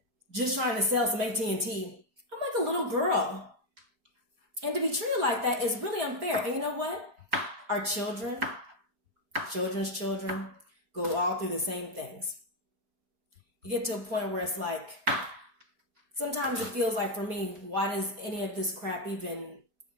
just trying to sell some AT&T. I'm like a little girl. And to be treated like that is really unfair. And you know what? Our children's children, go all through the same things. You get to a point where it's like, sometimes it feels like for me, why does any of this crap even,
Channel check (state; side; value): late; left; 4.8 ms